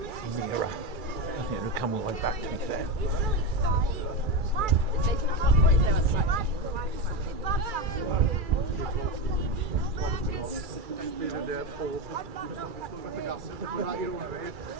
nearer. I think it'll come all the way back, to be fair.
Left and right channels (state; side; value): late; left; 2.3 ms